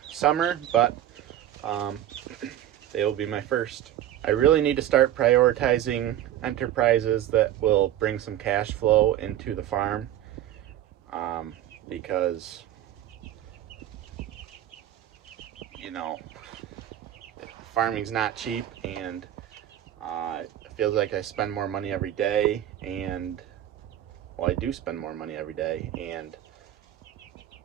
summer, but they will be my first. I really need to start prioritizing enterprises that will bring some cash flow into the farm, because you know, farming's not cheap, and it feels like I spend more money every day, and well, I do spend more money every day, and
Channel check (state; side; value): quieter; left; 12.0 dB